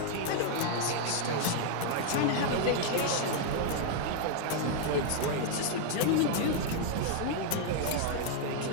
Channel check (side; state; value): both; different; correlation 0.00